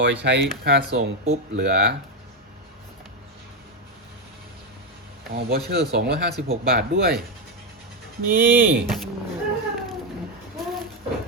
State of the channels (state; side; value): normal; both; correlation 0.08